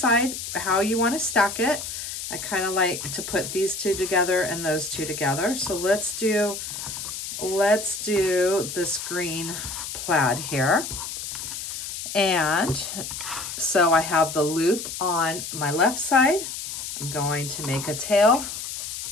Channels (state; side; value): noise; left; hiss, 7 dB below the sound